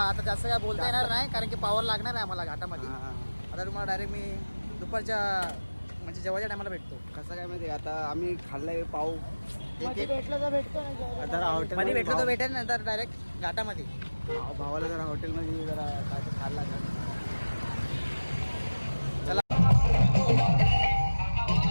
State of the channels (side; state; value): both; inverted; correlation -1.00